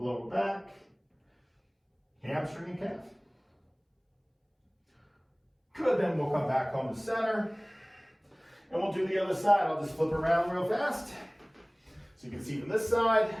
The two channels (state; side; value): identical; both; correlation 1.00